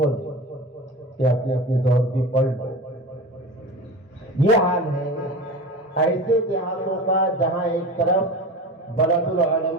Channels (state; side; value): normal; both; correlation 0.31